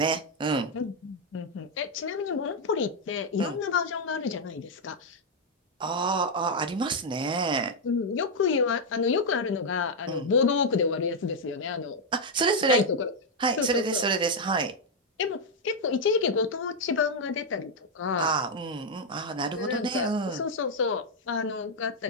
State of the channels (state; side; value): normal; both; correlation 0.00